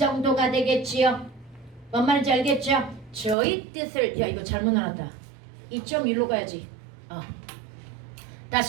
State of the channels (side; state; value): left; drops out; at 3.4 s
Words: 되겠지요. 뭔 말인지 알겠죠? 저의 뜻을 야 이거 잘못 나왔다. 2.1로 가야지.